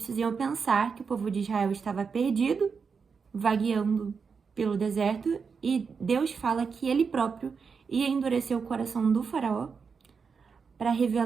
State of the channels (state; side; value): quieter; left; 5.6 dB